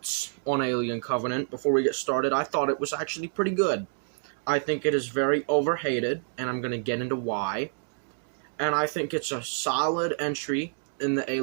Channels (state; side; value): silent; left; digital silence